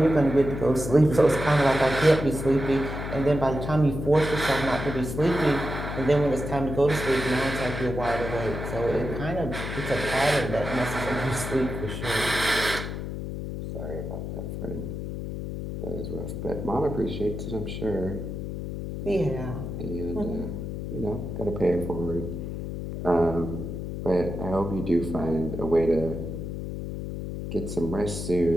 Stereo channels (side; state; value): left; noise; hum, 6 dB below the sound